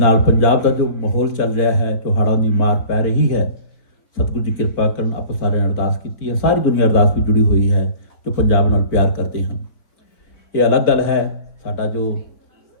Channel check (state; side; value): late; right; 3.7 ms